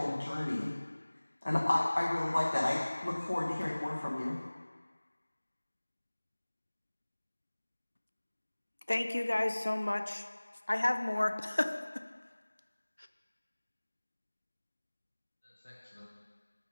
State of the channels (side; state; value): both; inverted; correlation -1.00